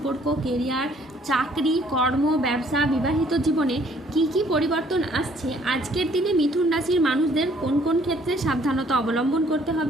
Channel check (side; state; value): both; normal; correlation 0.61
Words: কেরিয়ার, চাকরি, কর্ম, ব্যবসা, বিবাহিত জীবনে কি পরিবর্তন আসছে, আজকের দিনে মিথুন রাশির মানুষদের কোন কোন ক্ষেত্রে সাবধানতা অবলম্বন করতে